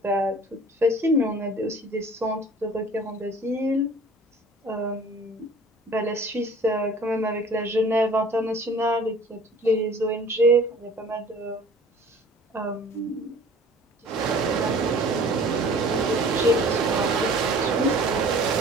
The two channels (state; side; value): normal; both; correlation 0.48